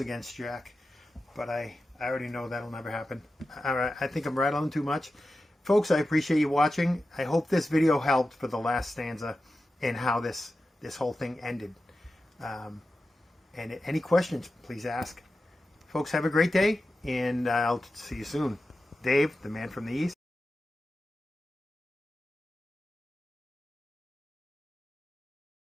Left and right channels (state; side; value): normal; both; correlation 0.92